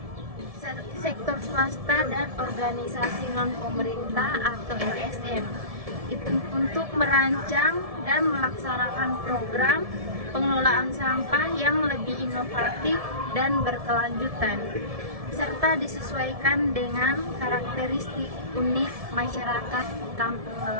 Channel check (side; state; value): left; late; 1.7 ms